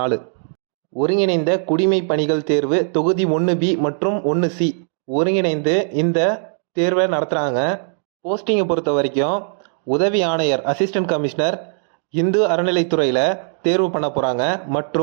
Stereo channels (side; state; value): left; silent; digital silence